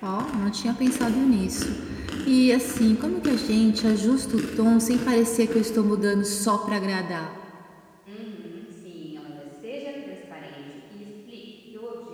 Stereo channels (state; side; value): identical; both; correlation 1.00